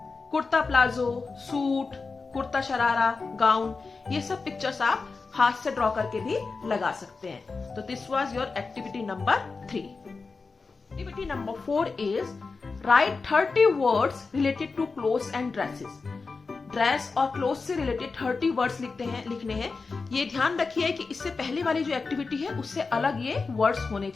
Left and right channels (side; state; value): right; quieter; 4.3 dB